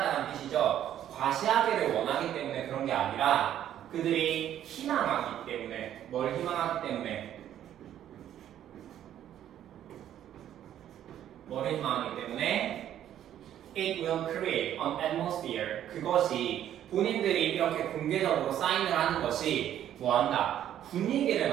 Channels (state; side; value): quieter; left; 11.0 dB